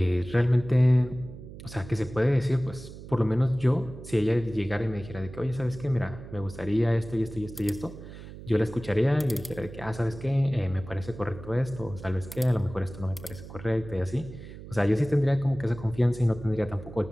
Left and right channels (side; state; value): right; noise; hum, 14 dB below the sound